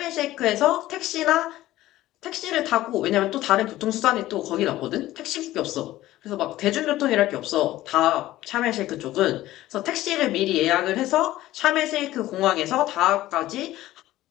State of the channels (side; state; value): right; quieter; 15.5 dB